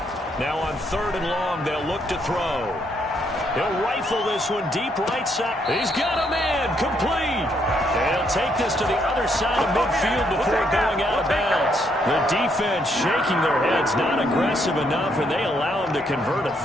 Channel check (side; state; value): both; normal; correlation 0.73